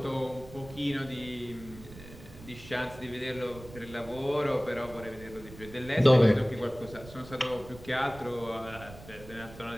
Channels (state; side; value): noise; right; rumble, 17 dB below the sound